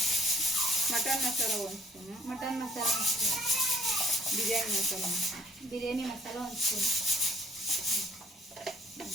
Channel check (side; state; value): both; normal; correlation 0.59